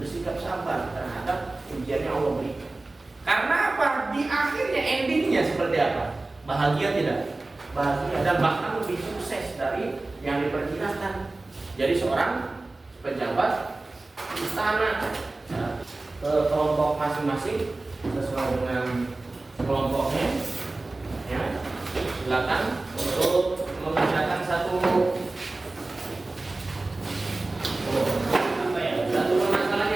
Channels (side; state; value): left; quieter; 3.1 dB